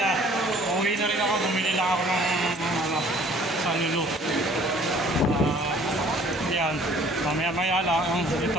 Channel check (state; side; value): normal; both; correlation 0.55